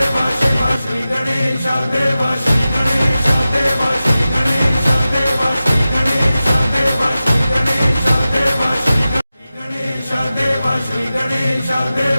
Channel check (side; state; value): both; inverted; correlation -0.94